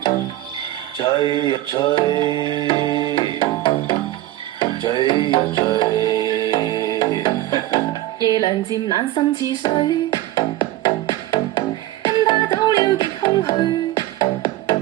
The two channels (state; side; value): quieter; left; 15.4 dB